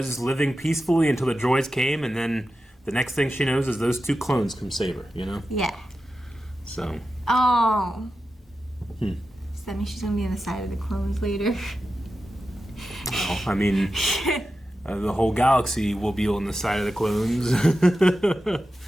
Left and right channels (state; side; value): normal; both; correlation 0.92